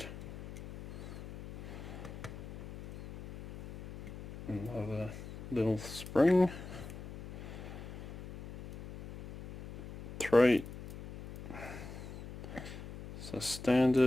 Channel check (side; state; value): left; noise; hum, 12 dB below the sound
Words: Another little spring. 3 is a